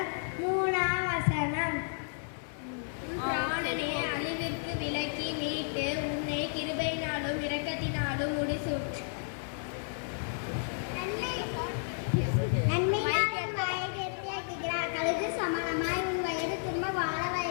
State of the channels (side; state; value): right; silent; 56 dB below the other